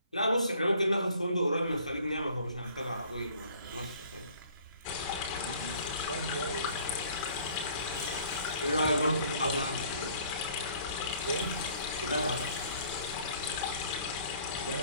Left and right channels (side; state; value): both; inverted; correlation -0.56